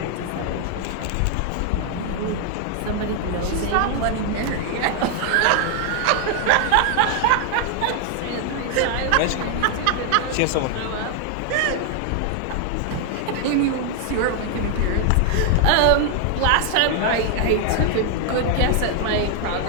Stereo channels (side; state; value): both; different; correlation 0.00